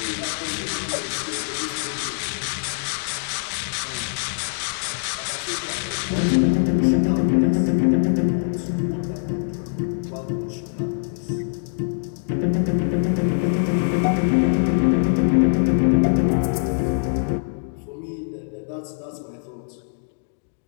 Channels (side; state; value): right; silent; digital silence